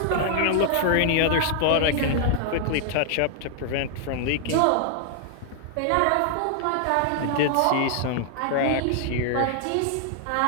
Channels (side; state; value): both; different; correlation 0.00